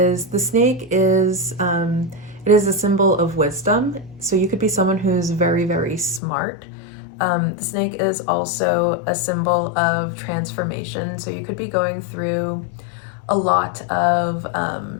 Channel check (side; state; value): right; drops out; at 6.2 s